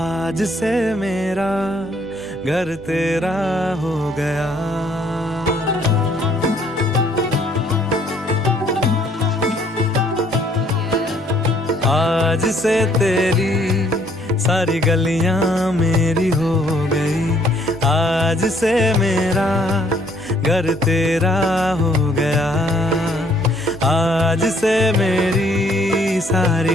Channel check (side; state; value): both; normal; correlation 0.64